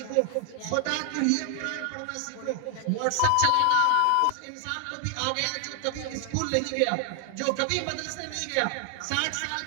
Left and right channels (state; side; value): different; both; correlation 0.00